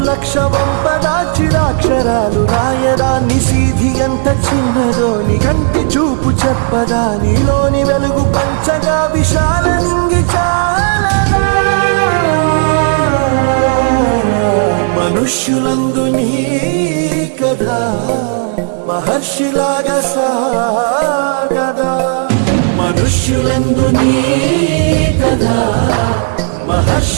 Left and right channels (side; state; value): left; silent; 56 dB below the other